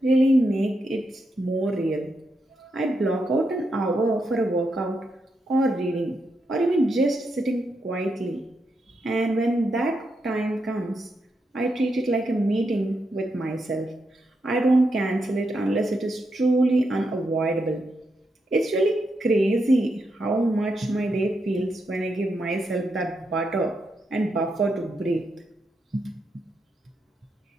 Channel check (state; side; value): normal; both; correlation 0.83